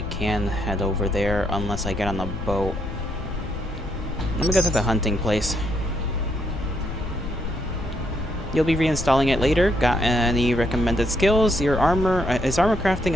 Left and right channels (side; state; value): left; noise; rumble, 7 dB below the sound